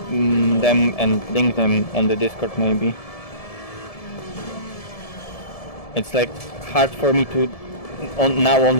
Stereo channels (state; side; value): late; right; 1.7 ms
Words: them and link them on the Discord maybe. It's like hard for me to now